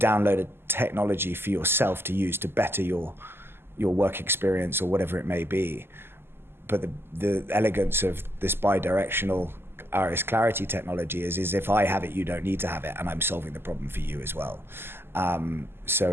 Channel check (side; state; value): left; late; 0.11 ms